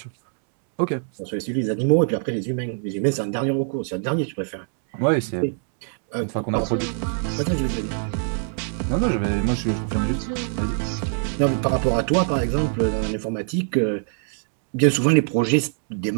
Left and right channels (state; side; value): silent; left; 63 dB below the other